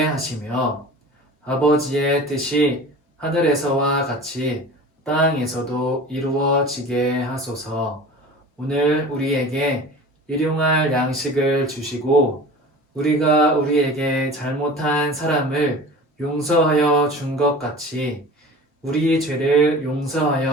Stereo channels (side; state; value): both; normal; correlation 0.38